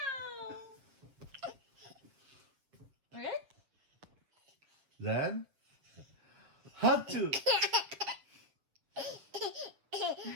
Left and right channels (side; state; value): left; late; 7.3 ms